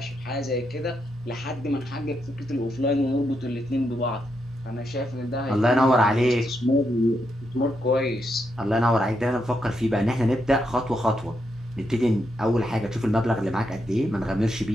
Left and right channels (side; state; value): both; normal; correlation 0.81